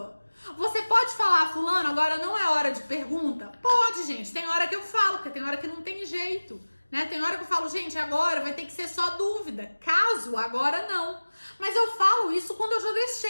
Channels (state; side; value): inverted; both; correlation -1.00